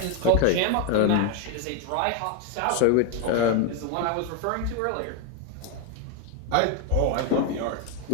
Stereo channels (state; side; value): different; both; correlation 0.01